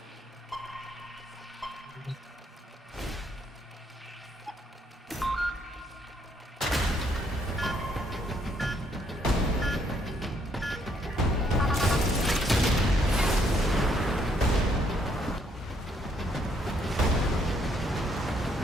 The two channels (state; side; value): normal; both; correlation 0.70